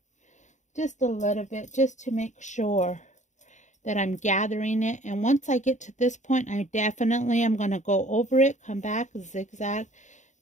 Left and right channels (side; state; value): right; late; 0.35 ms